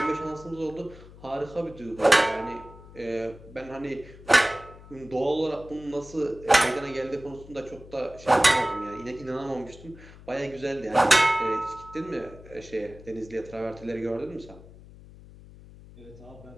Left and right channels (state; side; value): noise; left; hum, 19 dB below the sound